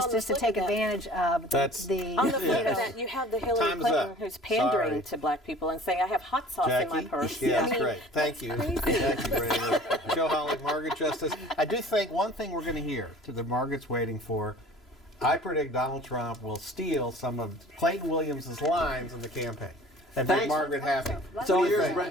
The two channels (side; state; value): both; normal; correlation 0.47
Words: the just to flip take of that- advantage of the On the flip of that, you have the Hillary Time's Clinton up. who's pandering Sorry. to black people and saying, I have hot sauce in my Jackie? purse. Yeah, I that's mean, great. Thank you. Thank you, Brandon. Joe Holly, Margaret Justice. I do think one thing we're going to hear that Margaret's waiting for, I predict Donald Trump will steal some of Clayton Williams' lines in the campaign and make Thanks. Margaret happy. It's all What do you yours, think?